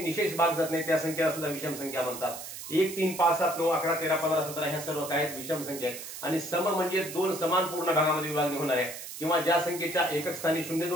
भाग जात नाही त्या संख्येला सुद्धा विषम संख्या म्हणतात. 1, 3, 5, 7, 9, 11, 13, 15, 17 ह्या सर्व काय विषम संख्या आहेत. आणि सम म्हणजे 2 समान पूर्ण भागामध्ये विभागणी होणाऱ्या, किंवा ज्या संख्येच्या एकक स्थानी 0,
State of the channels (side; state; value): right; noise; hiss, 10 dB below the sound